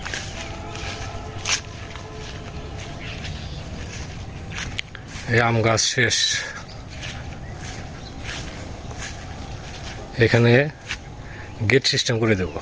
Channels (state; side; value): identical; both; correlation 1.00